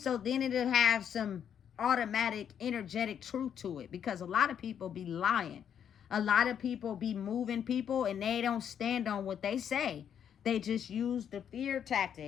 then it'll have some automatic, energetic truth to it. Because a lot of people be lying. A lot of people be moving people, and they don't stand on what they say. They just use the fear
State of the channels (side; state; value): right; quieter; 8.6 dB